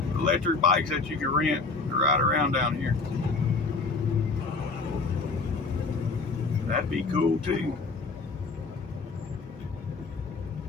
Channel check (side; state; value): right; quieter; 4.0 dB